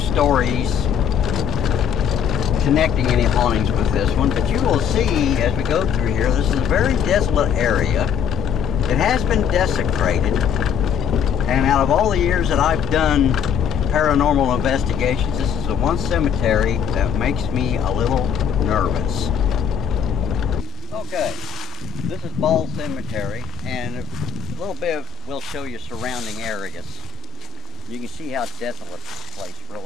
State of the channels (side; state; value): right; quieter; 10.9 dB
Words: stories connecting any hauntings with this one, but you will see as we go through here, this is a very desolate area. It has been desecrated, and out of all the years that I've done paranormal investigations, this is the one cemetery that makes me a little nervous. Okay, this is Ball Cemetery, and a little bit we'll show you surrounding areas. You can see how desolate this place